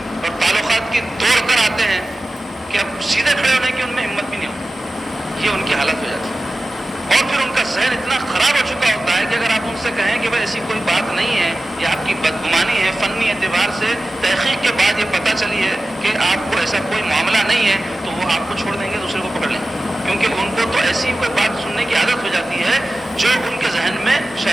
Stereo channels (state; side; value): normal; both; correlation 0.95